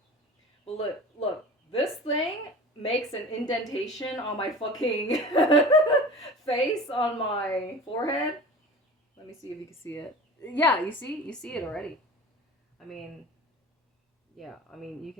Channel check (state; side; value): normal; both; correlation 0.37